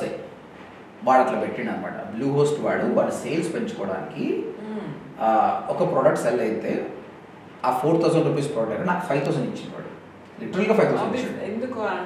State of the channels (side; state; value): both; identical; correlation 1.00